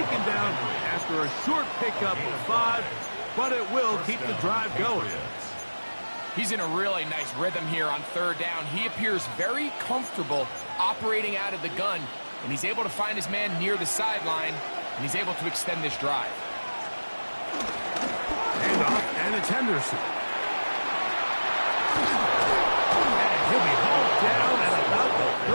down after a short pickup of 5, but it will keep the drive going. He's in a really nice rhythm here on 3rd down. He appears very comfortable operating out of the gun, and he's able to find his man near the sideline, and he's able to extend this drive. Hand off, and it's Henderson. And he'll be hauled down at about the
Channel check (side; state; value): both; inverted; correlation -1.00